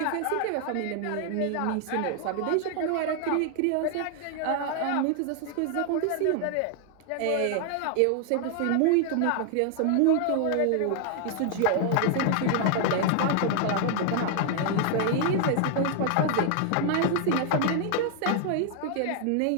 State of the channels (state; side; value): different; both; correlation 0.00